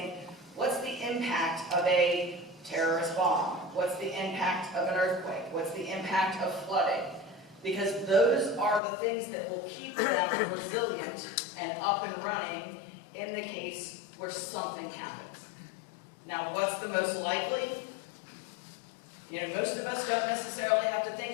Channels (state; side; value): drops out; right; at 8.8 s